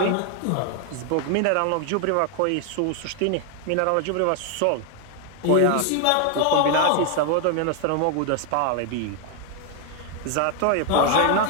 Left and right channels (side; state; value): both; different; correlation 0.00